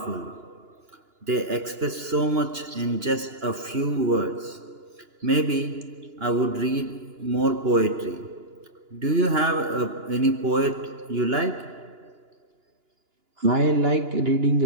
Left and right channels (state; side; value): late; left; 2.9 ms